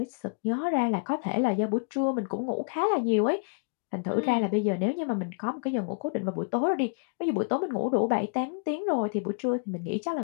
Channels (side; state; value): right; quieter; 37.6 dB